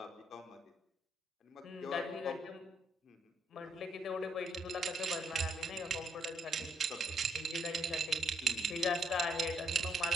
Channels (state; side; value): normal; both; correlation 0.72